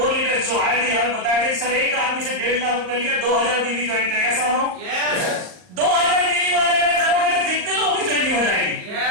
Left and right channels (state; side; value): late; left; 39 ms